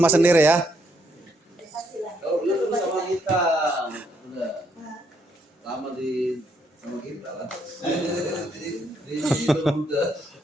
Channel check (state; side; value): normal; both; correlation 0.74